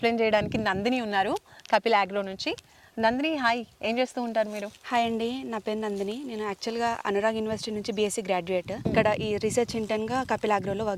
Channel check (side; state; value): both; identical; correlation 1.00